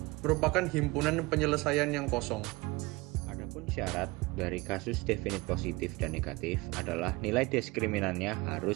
merupakan himpunan penyelesaian yang kosong. Adapun syarat dari kasus definit positif dan negatif adalah nilai diskriminannya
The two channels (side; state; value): left; quieter; 23.2 dB